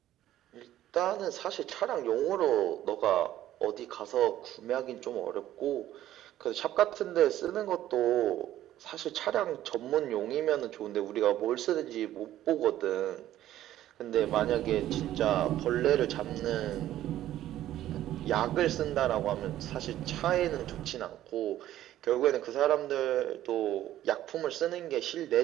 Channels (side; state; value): left; quieter; 13.1 dB